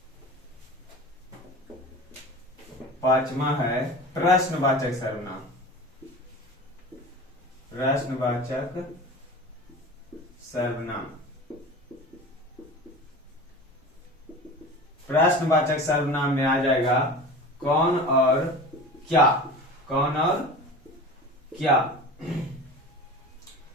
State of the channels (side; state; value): both; normal; correlation 0.35